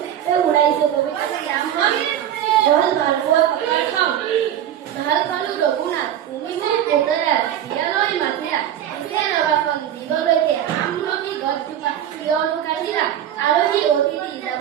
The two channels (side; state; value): left; quieter; 10.7 dB